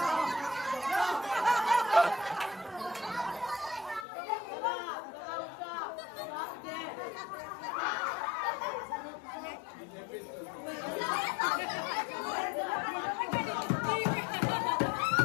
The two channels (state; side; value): drops out; right; at 4.0 s